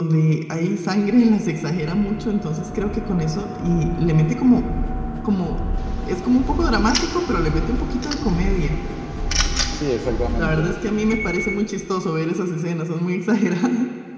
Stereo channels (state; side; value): identical; both; correlation 1.00